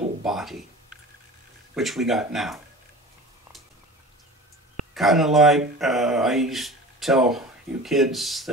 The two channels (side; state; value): both; normal; correlation 0.38